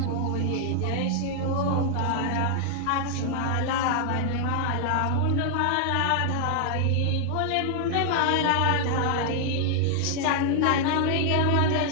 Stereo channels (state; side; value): different; both; correlation 0.00